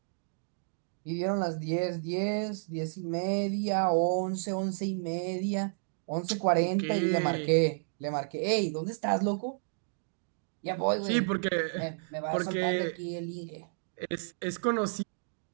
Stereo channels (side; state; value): left; silent; digital silence